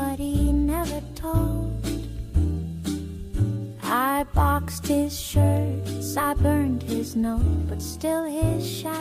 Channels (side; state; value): both; identical; correlation 1.00